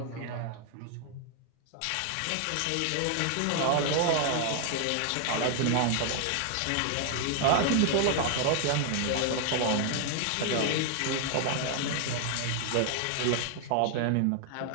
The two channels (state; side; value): different; both; correlation 0.00